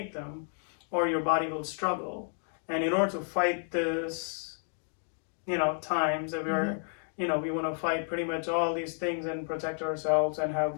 them, or your body will struggle. And in order to fight this, times that we want to fight pretty much all these things and protect ourselves and have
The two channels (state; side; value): silent; right; 57 dB below the other